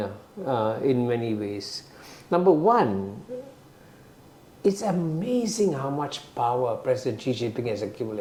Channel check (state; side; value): identical; both; correlation 1.00